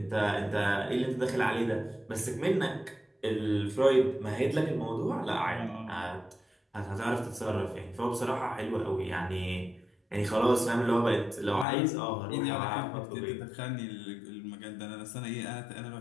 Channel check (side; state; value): right; drops out; at 11.7 s